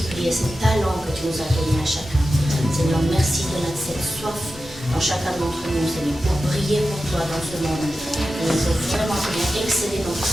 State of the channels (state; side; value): normal; both; correlation 0.92